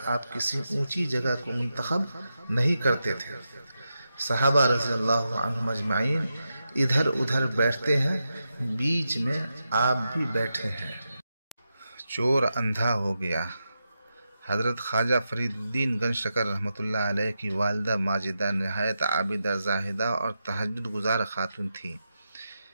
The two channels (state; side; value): inverted; both; correlation -0.88